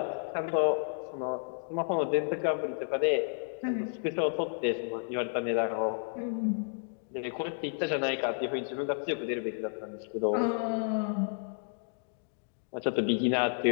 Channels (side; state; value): right; silent; digital silence